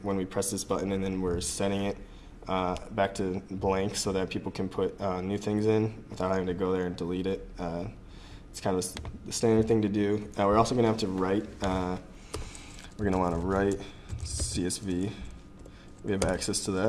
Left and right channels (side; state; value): both; identical; correlation 1.00